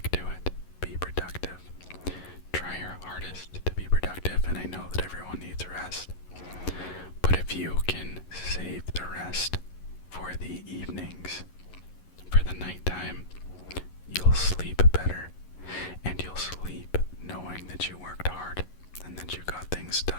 to it. Be productive.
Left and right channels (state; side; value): late; right; 11 ms